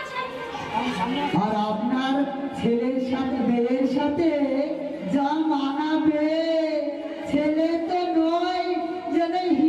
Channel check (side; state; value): both; identical; correlation 1.00